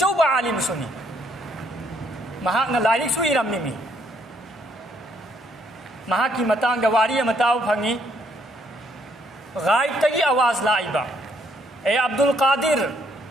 عالم سنی مہاک نہ لائرک سوئی رمی می مہاک کی متانگ واری متاب پھنگی غائب تگی آواز لائبا اے عبد القادر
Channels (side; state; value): both; normal; correlation 0.69